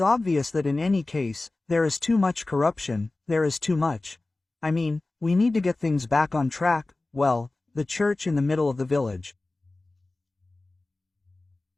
that in any case, there is too much corruption, there is too much. I mean, we need to get things back on track, well, the church in the middle of the village.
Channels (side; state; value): right; quieter; 3.1 dB